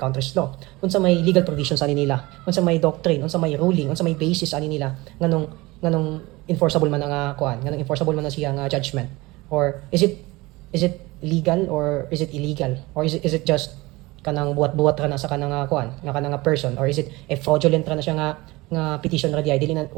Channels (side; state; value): left; quieter; 21.6 dB